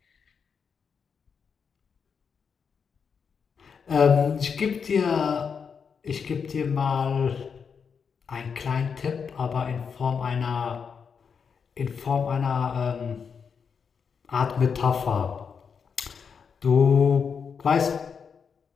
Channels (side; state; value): right; quieter; 6.3 dB